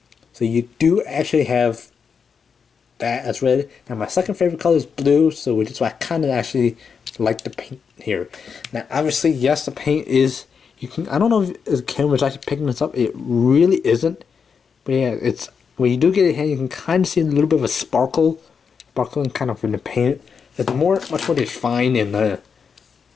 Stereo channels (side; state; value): right; quieter; 6.2 dB